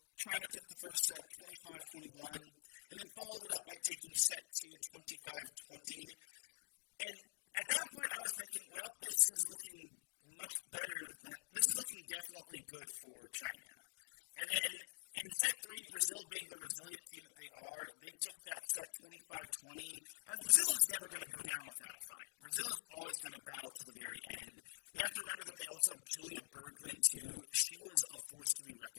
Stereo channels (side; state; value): right; silent; digital silence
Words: China took the first set 25-21, and then followed it up by taking set 2 25-20. And at that point, I was thinking, well, this is looking definitely good for China. And then in set 3, Brazil being the resilient team that they are, they took that set 25-20, as Brazil is never going to go down without a fight. Brazil is always going to battle to the very end. You have to remember that they also have Julia Bergman, too. She was a force to be